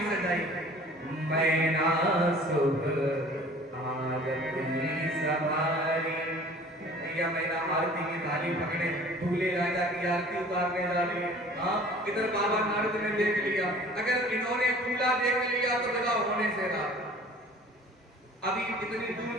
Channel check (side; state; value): both; normal; correlation 0.48